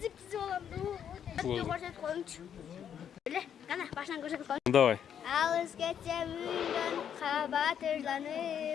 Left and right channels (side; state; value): right; quieter; 8.8 dB